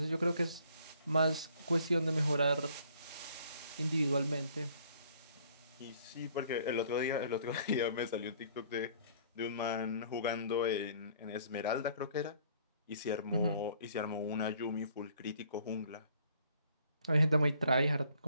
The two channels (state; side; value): inverted; both; correlation -0.59